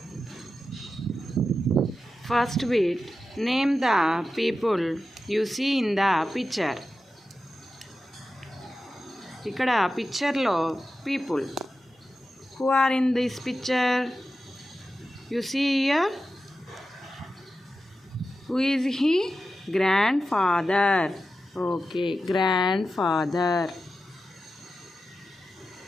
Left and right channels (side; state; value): both; normal; correlation 0.92